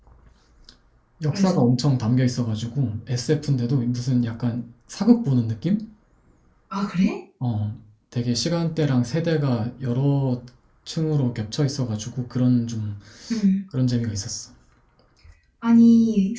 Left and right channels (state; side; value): identical; both; correlation 1.00